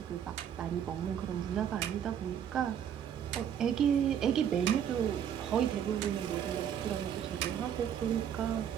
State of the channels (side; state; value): left; quieter; 9.0 dB